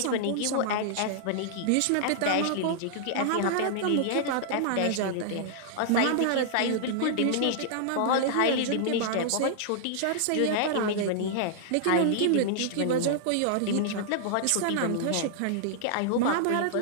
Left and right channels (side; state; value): both; different; correlation -0.01